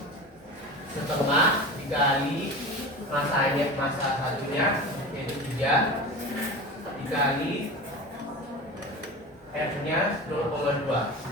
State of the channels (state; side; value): normal; both; correlation 0.31